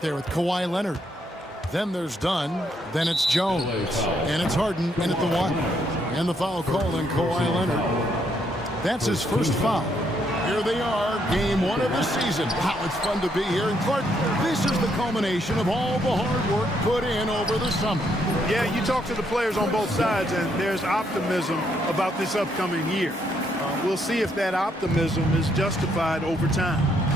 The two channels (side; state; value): both; normal; correlation 0.74